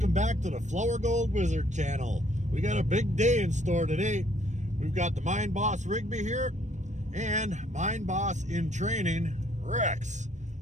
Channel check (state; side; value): late; left; 0.34 ms